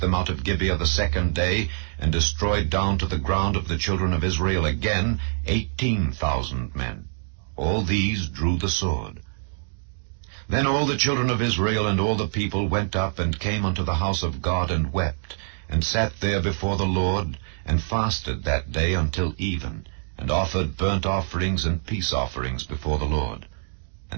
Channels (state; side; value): silent; left; digital silence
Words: out of Gibeah the second day, and destroyed down to the ground of the children of Israel again 18,000 men. All these drew the sword. Then all the children of Israel and all the people went up, and came unto the house of God, and wept, and sat there before the Lord, and fasted that day until even, and offered burnt offerings and peace offerings before the Lord.